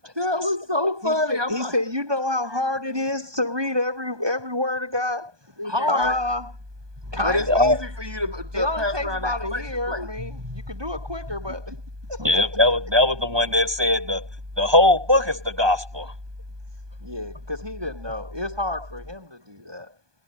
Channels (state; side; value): late; left; 1.2 ms